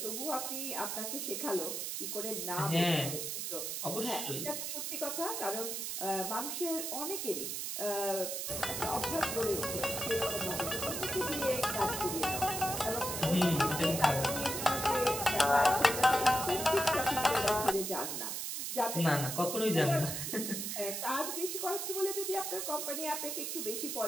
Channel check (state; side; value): noise; right; hiss, 3 dB below the sound